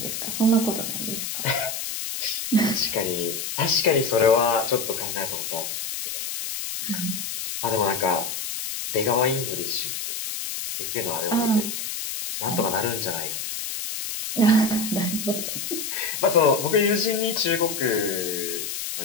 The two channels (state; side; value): noise; left; hiss, 5 dB below the sound